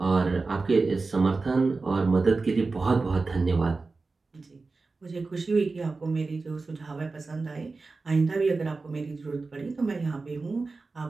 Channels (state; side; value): quieter; left; 3.9 dB